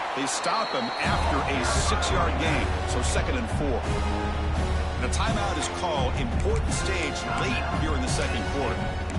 They stop him after a 6-yard gain, so second and 4. And a timeout is called. Important stage late here in the second quarter.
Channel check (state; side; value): identical; both; correlation 1.00